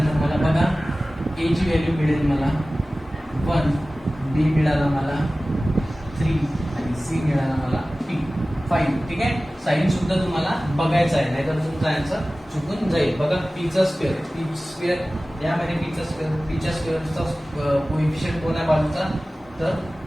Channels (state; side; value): normal; both; correlation 0.97